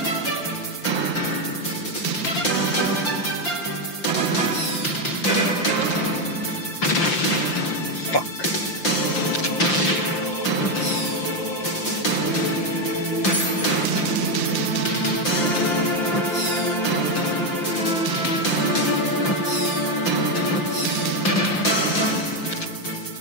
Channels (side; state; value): right; late; 5.8 ms